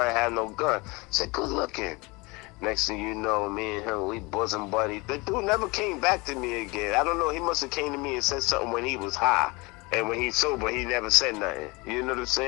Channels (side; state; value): right; quieter; 25.4 dB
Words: had no gun. I said, good looking. Next thing you know, me and him, we bosom buddies. The dude never came back to me again. I don't know, he must have came to me and said something when he was high. And when he's sober, he never said nothing. You know what I'm